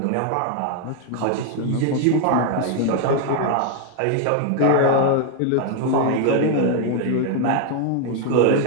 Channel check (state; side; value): different; both; correlation 0.00